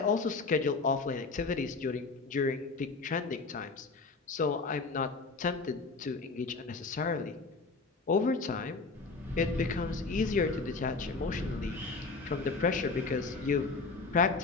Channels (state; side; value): quieter; right; 4.1 dB